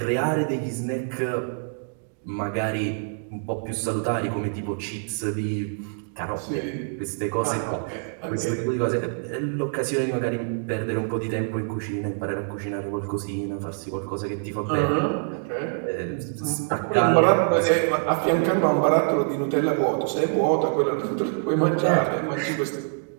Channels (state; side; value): silent; left; digital silence